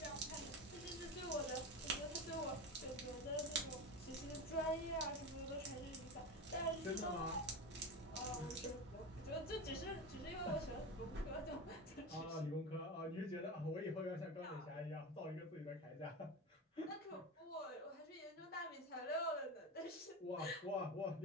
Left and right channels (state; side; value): normal; both; correlation 0.23